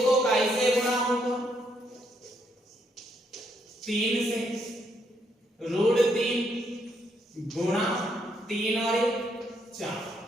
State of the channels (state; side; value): normal; both; correlation 0.74